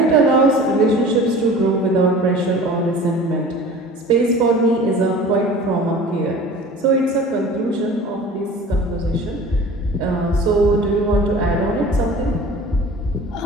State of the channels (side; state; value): both; normal; correlation 0.42